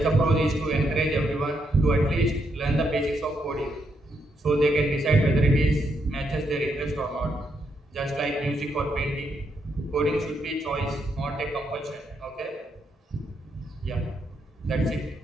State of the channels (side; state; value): both; normal; correlation 0.78